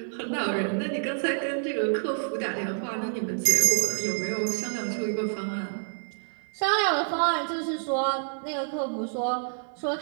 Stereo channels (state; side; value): silent; left; digital silence